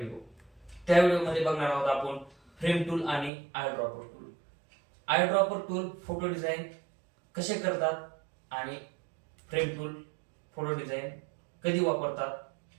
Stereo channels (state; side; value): drops out; left; at 3.3 s